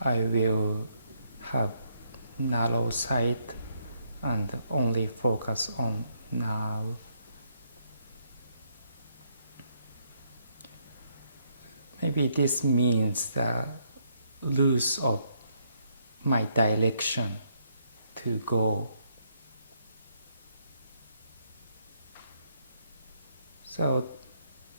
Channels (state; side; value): inverted; both; correlation -0.73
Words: will have narrow sight and only focus on now. Maybe this means the loss of my direction to go. So